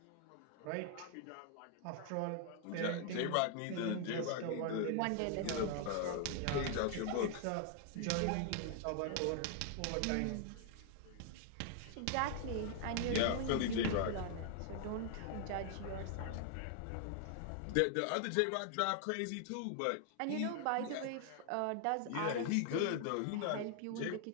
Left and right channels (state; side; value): different; both; correlation 0.00